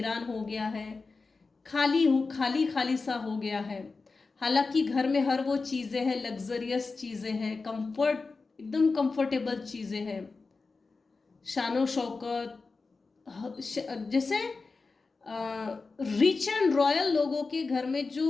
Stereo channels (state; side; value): quieter; right; 4.1 dB